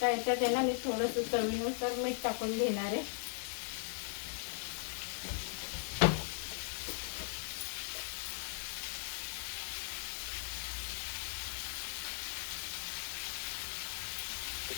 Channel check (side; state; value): right; silent; digital silence